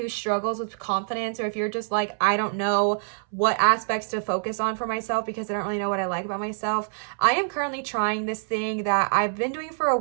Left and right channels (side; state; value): left; silent; 61 dB below the other